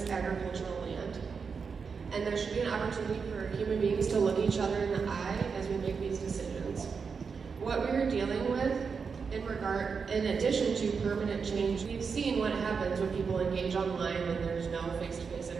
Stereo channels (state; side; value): quieter; left; 5.6 dB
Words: agricultural land. And there should be an opportunity for human beings to look each other in the eye as we make these decisions. What we are dealing with in addition to permanent change, we've seen what happens when people engage online and there's no face-to-face